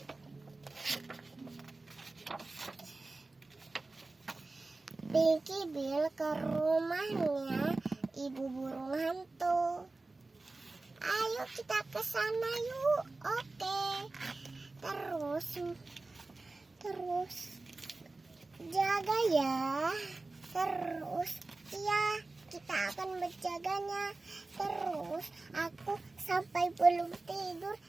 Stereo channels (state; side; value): quieter; left; 3.3 dB